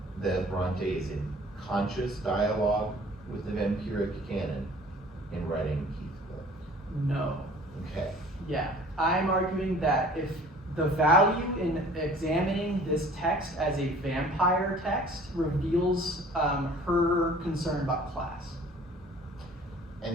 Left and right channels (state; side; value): normal; both; correlation 0.50